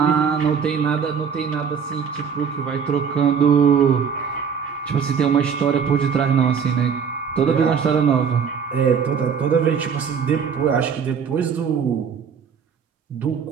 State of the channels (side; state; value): left; quieter; 6.8 dB